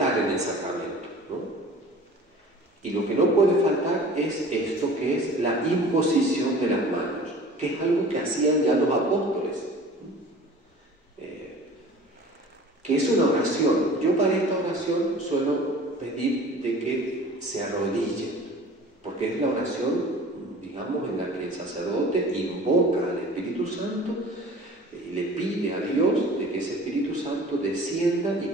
en el sacramento, ¿no? Y lo que no puede faltar es esto, que es la imposición de las manos, que es algo que hacían ya los apóstoles, que es una oración. Yo para esta oración suelo pedir de que se arrodillen, porque es la oración, digamos, en la que el sacerdote invoca al Espíritu Santo y le pide a Dios de que ese Espíritu Santo descienda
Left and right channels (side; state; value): both; normal; correlation 0.44